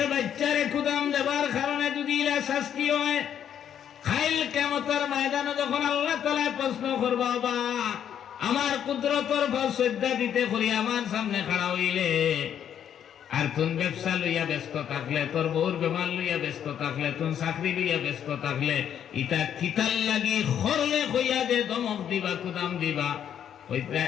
বাচ্চারে কুদাম দেবার কারণে যদি ইলা শাস্তি হয় খাইল কেমতের ময়দানে যখন আল্লাহ তাআলা প্রশ্ন করবা বা আমার কুদরতর ভাব শ্রদ্ধা দিতে করি আমার সামনে খাড়া হইলে আর তুন ব্যবসা লইয়া ব্যস্ত থাকলে তোর বউর বেমার লইয়া ব্যস্ত থাকলে তুন চাকরি লইয়া ব্যস্ত থাকলে ইটা কিতাল লাগি খরলে কইয়া দে দমক দিবা কুদাম দিবা ওইটা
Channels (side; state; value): right; quieter; 9.3 dB